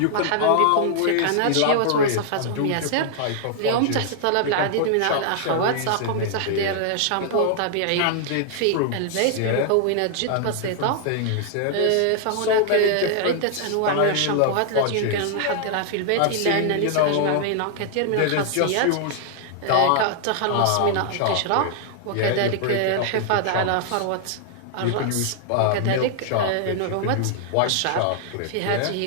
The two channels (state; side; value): different; both; correlation 0.00